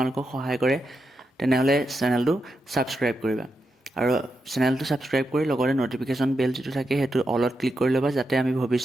সহায় কৰে তেনেহ'লে চেনেলটো ছাবস্ক্ৰাইব কৰিবা আৰু চেনেলটো ছাবস্ক্ৰাইব কৰি লগতে নটিফিকেশ্যন বেল যিটো থাকে সেইটো অলত ক্লিক কৰি ল'বা যাতে আমি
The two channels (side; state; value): both; normal; correlation 0.86